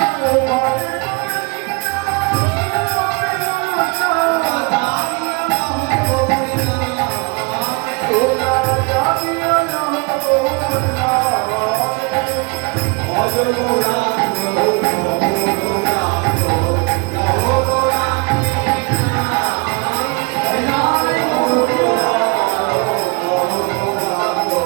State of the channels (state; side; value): quieter; left; 29.5 dB